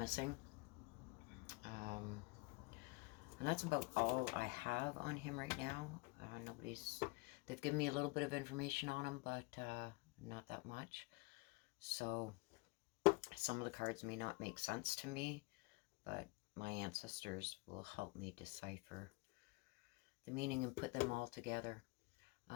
And that's about all I have on him right now. They've given me a little bit of information on him, but not that much. So some of the cards may not make sense to me, but my ancestors will help me decipher the meaning and put them all together.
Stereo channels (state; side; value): quieter; right; 26.2 dB